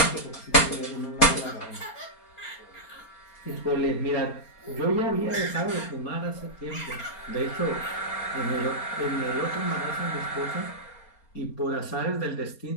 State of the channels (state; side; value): late; right; 4.3 ms